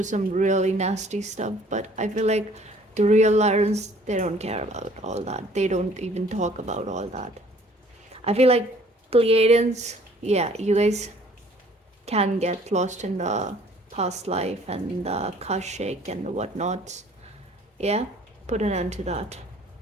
some really nasty stuff. But I feel like the real Lyrans, they don't care about all that. They don't even talk about all that. I feel like Pleiadians, yeah, you guys can get lost in the past life and the Akashic and whatnot. Yeah, put an end to that.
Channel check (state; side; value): normal; both; correlation 0.56